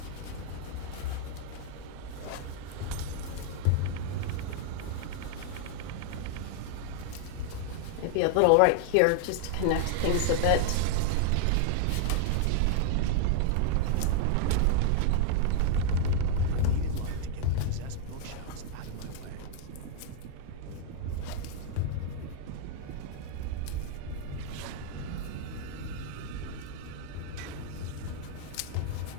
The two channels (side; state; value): both; different; correlation -0.01